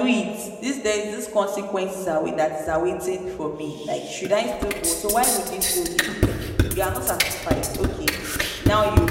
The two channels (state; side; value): identical; both; correlation 1.00